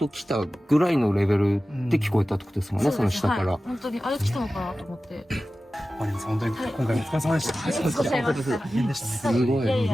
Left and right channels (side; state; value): both; normal; correlation 0.95